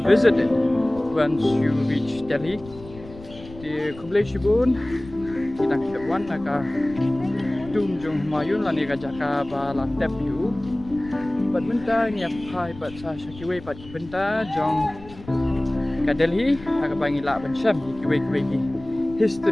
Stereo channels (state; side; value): noise; left; rumble, 18 dB below the sound